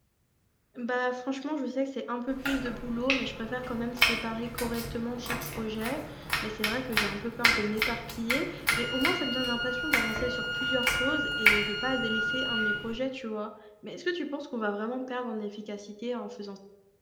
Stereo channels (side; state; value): both; identical; correlation 1.00